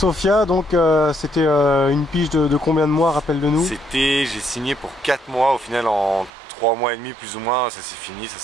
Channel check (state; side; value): drops out; left; at 6.3 s